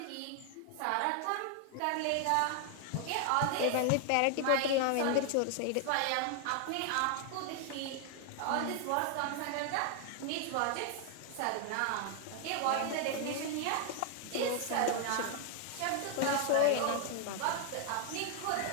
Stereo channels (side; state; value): both; different; correlation 0.00